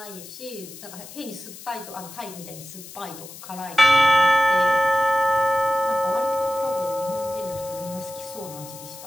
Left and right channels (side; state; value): left; noise; hiss, 15 dB below the sound